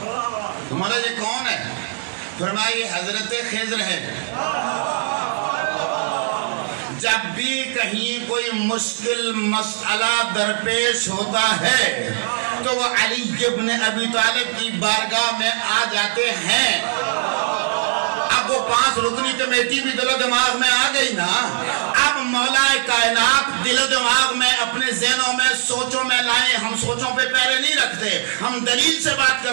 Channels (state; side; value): silent; left; digital silence